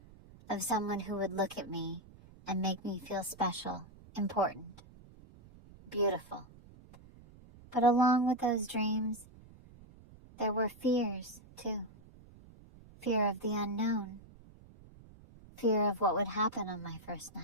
of someone who would look at me and make me feel special, important. beautiful. But along with those dreams, there were fears, too. Fear of the unknown. Fear of what would happen on my first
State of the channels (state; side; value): noise; right; rumble, 22 dB below the sound